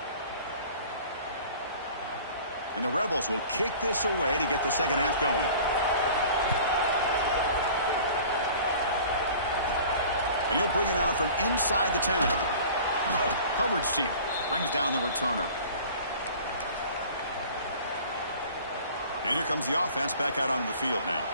And the Rebels will kick this away to get the second half going. And he'll bring it out from inside the 10. Coverage team brings down the returner. And here comes the offense back out onto the field now.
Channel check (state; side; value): inverted; both; correlation -0.45